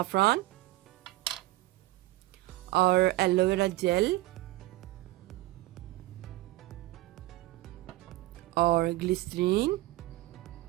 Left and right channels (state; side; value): quieter; left; 18.2 dB